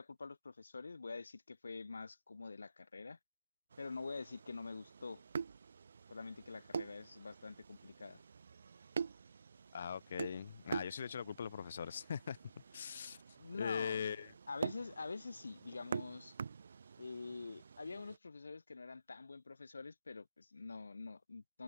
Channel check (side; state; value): both; inverted; correlation -0.84